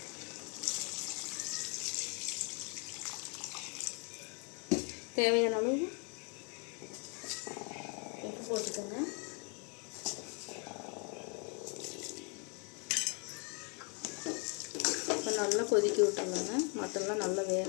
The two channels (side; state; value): right; quieter; 35.3 dB